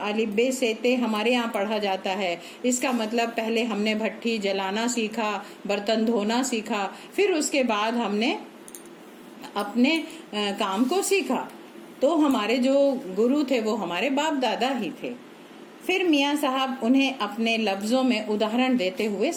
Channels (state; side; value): identical; both; correlation 1.00